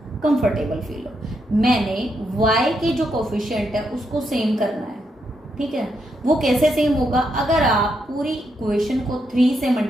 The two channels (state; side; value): normal; both; correlation 0.80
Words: कंफर्टेबल फील हो। मैंने y के जो कोफिशिएंट है उसको सेम करना है, ठीक है। वो कैसे सेम होगा, अगर आप पूरी इक्वेशन को 3 से